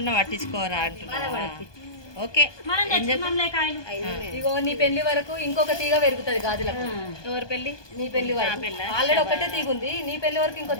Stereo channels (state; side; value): late; right; 1.2 ms